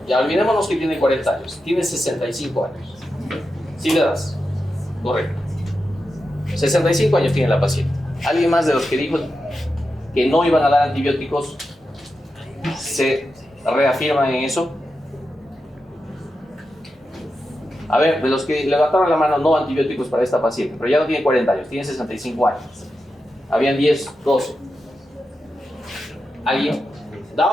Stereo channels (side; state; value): both; normal; correlation 0.89